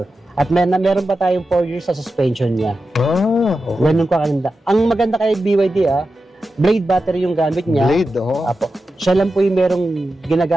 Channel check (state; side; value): normal; both; correlation 0.91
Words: At meron pa tayong 4 years sa suspension niya. Ganun ko kaganda. Ang maganda kay BYD, blade battery yung gamit niya. Blade, Apo. Siya lang po yung merong